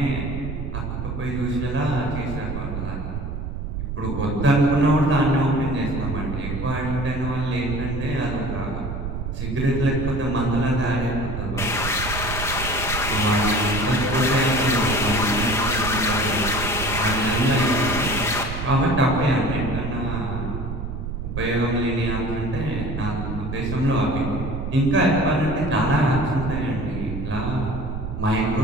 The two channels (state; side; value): noise; right; rumble, 5 dB below the sound